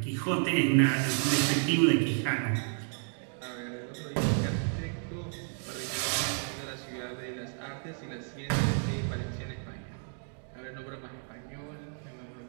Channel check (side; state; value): left; silent; 57 dB below the other